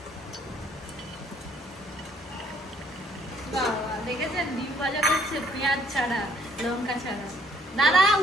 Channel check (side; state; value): both; normal; correlation 0.63